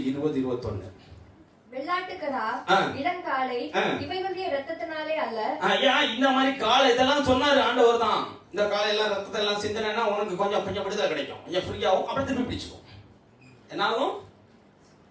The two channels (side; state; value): both; identical; correlation 1.00